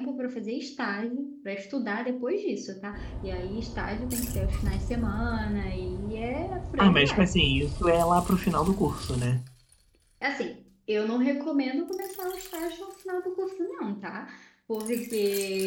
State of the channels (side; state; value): both; identical; correlation 1.00